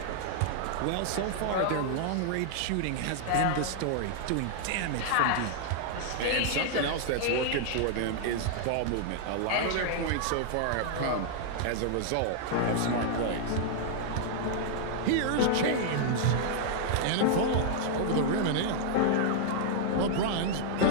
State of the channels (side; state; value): both; different; correlation -0.01